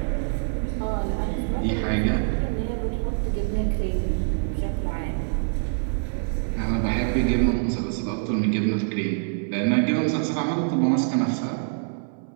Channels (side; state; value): left; silent; 61 dB below the other